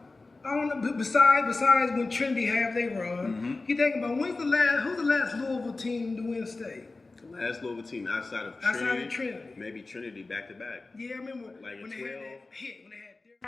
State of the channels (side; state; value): right; quieter; 3.5 dB